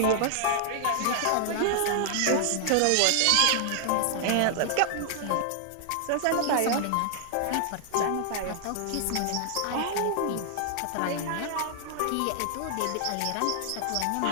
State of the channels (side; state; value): both; different; correlation -0.01